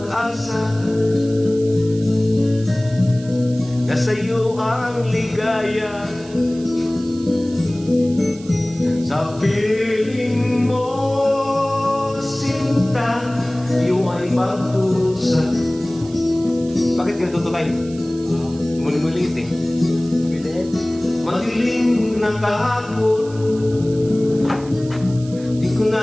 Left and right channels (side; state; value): right; noise; hiss, 21 dB below the sound